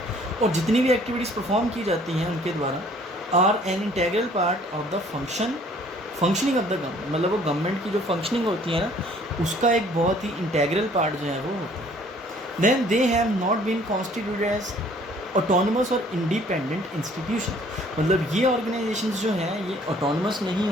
और जितनी भी एक्टिविटीज़ परफॉर्म की जाती हैं उनके द्वारा are an integral part of the functioning of the government. मतलब वो गवर्नमेंट की जो फंक्शनिंग होती है ना उसका एक बहुत ही इंटेग्रल पार्ट जो है वो होता है। Then they have not been constituted as autonomous और इंडिपेंडेंट इंस्टीट्यूशन। मतलब ये ऑर्गेनाइजेशंस जो हैं ये ऑटोनमस नहीं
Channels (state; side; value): normal; both; correlation 0.57